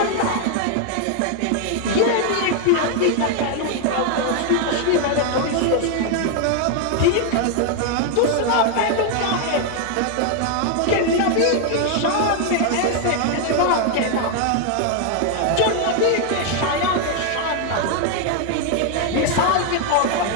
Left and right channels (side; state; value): both; different; correlation 0.00